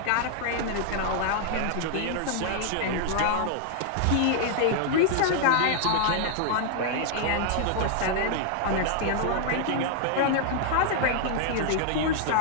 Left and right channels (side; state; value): both; different; correlation -0.01